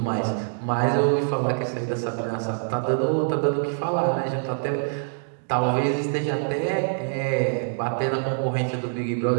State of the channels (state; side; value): silent; left; digital silence